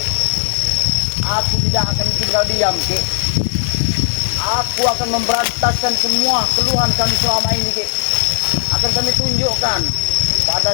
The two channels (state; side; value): silent; right; 63 dB below the other